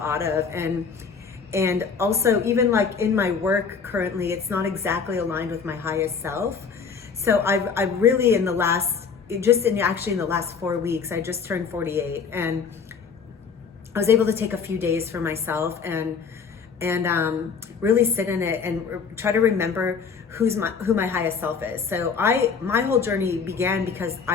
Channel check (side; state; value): right; quieter; 5.8 dB